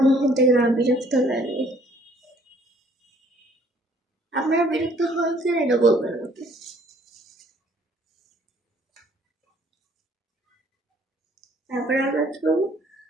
নিয়ে থেকে আমার বিরক্ত লাগে। আপনারা বিরক্ত হয় কিনা এটা বলবেন আমাকে। তারপরে আমরা কি করবো,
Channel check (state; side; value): normal; both; correlation 0.60